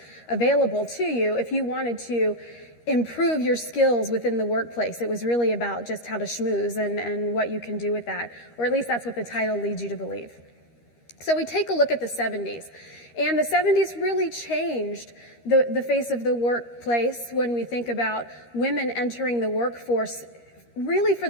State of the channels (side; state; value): right; late; 13 ms